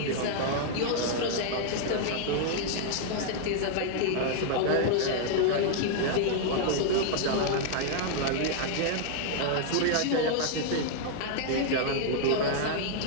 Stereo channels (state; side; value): different; both; correlation -0.01